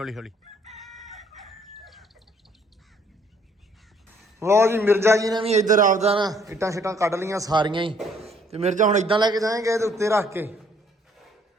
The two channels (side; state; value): both; normal; correlation 0.63